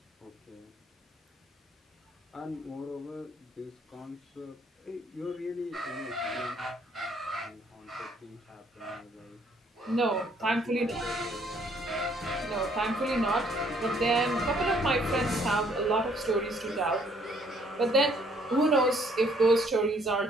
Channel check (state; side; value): normal; both; correlation 0.64